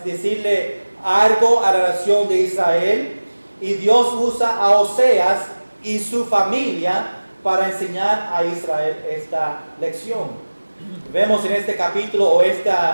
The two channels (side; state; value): both; inverted; correlation -1.00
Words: decirle algo a la nación de Israel, y Dios usa a Oseas y su familia para enseñar a Israel esta lección. Vemos en este capítulo o